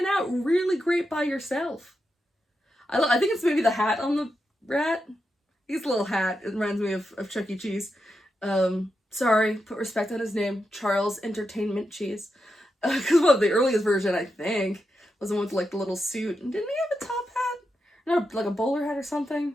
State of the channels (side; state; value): both; normal; correlation 0.87